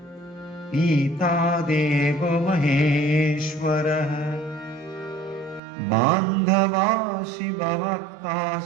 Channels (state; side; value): drops out; left; at 5.6 s